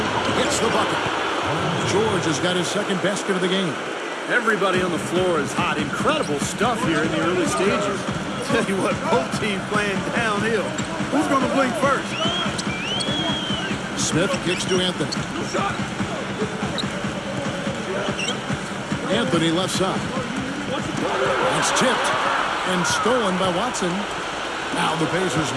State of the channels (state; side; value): identical; both; correlation 1.00